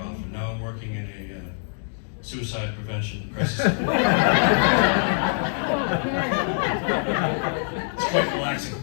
and now I'm working in a suicide prevention crisis. It's quite relaxing.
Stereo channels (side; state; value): right; silent; 62 dB below the other